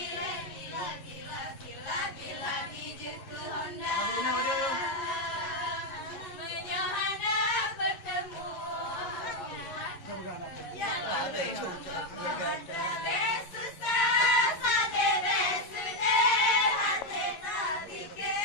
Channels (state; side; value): late; right; 11 ms